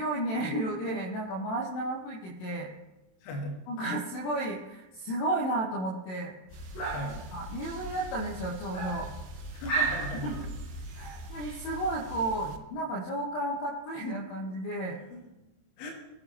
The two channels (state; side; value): late; right; 27 ms